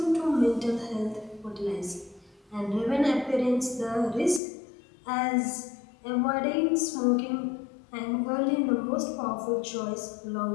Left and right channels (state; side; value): drops out; right; at 4.4 s